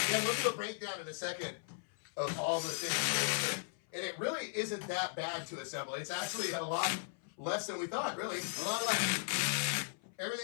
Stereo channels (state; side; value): silent; right; 53 dB below the other